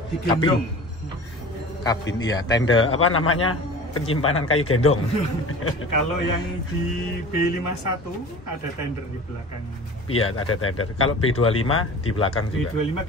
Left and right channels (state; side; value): normal; both; correlation 0.39